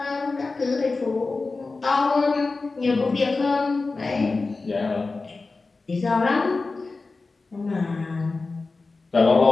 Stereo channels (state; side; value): quieter; right; 3.8 dB